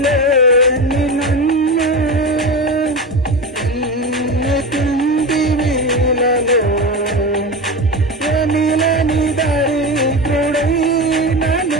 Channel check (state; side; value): normal; both; correlation 0.23